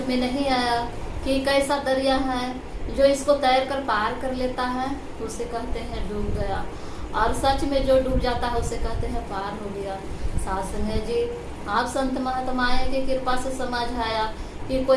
में नहीं आया कि कैसा दरिया है जो इसको तैर कर पार कर लेता है, उसे कहते हैं डूब गया, और सच में जो डूब जाता है उसे कहते हैं पार हो गया। शासन है जी। आप संत महात्माएं की कृपा से समझ आया कि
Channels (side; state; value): both; identical; correlation 1.00